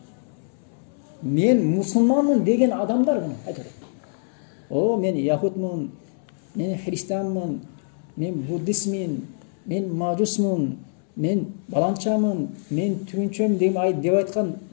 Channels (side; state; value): right; silent; 62 dB below the other